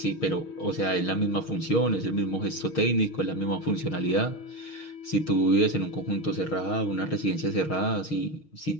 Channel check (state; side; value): late; right; 6.4 ms